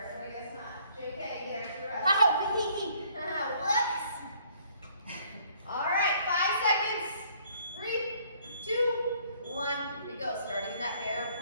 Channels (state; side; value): inverted; both; correlation -0.62